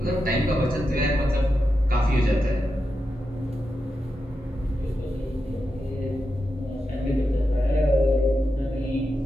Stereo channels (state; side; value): normal; both; correlation 0.88